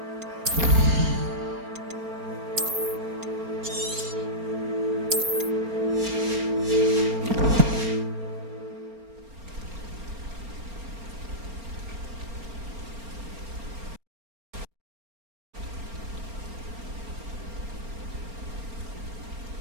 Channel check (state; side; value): late; left; 4.3 ms